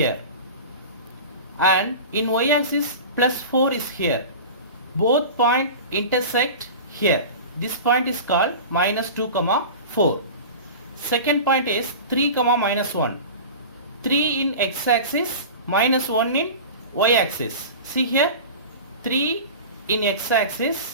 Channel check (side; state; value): both; inverted; correlation -0.33